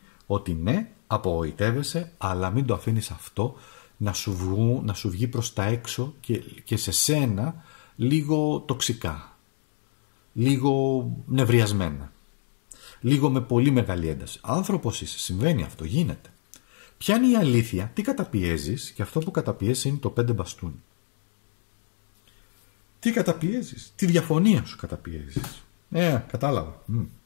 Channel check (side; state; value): right; silent; digital silence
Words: ότι ναι, απογοητεύεσαι, αλλά μην το αφήνεις αυτό να σου βγει προς τα έξω και σε σένα λίγο τοξικά, λίγο νευριασμένα, λίγο με πολύ μεγάλη ένταση. Άνθρωπος είσαι, συμβαίνει αυτό, γίνεται. Ποια είναι η αλήθεια, τι καταπιέζεις, και αυτό που καταπιέζεις είναι το 5 μπαστούνι. Τι καταπιέζεις, τη διαφωνία σου καταπιέζεις. Κατάλαβα.